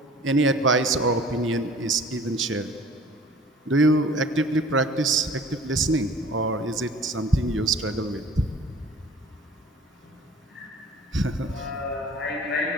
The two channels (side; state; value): both; normal; correlation 0.47